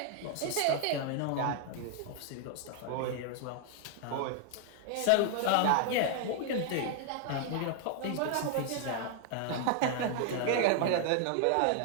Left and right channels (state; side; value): different; both; correlation 0.00